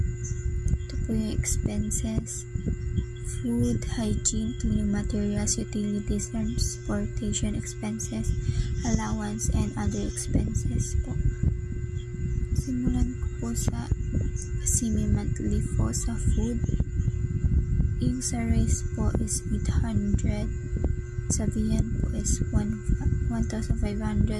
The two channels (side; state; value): both; identical; correlation 1.00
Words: ito po yung expenses. Food, hygiene, cleaning materials, utilities, transportation expenses, allowance, and other expenses po. Simulan ko po sa semi-monthly po sa food. Yung sa rice po is 800. Sa viand po is 1,500.